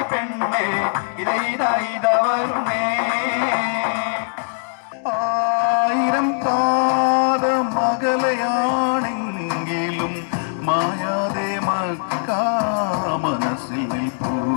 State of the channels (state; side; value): silent; right; digital silence